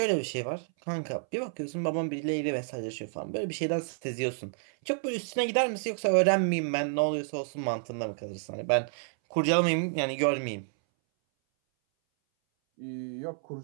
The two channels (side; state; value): left; silent; 58 dB below the other